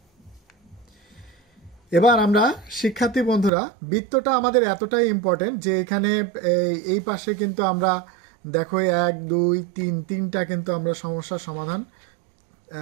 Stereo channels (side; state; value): left; drops out; at 3.5 s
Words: এবার আমরা শিক্ষার্থী বন্ধুরা বৃত্তটা আমাদের এতটাই ইম্পর্টেন্ট যে এখানে এই পাশে কিন্তু আমরা দেখো 1 2 3 তিনটা কিন্তু আমরা সমস্যার সমাধান,